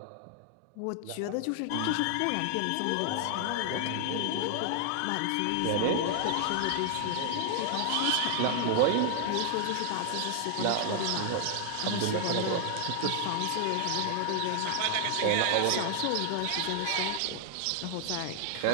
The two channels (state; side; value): different; both; correlation 0.00